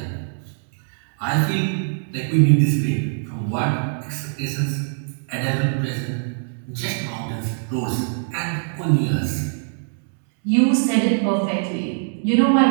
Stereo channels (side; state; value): left; silent; digital silence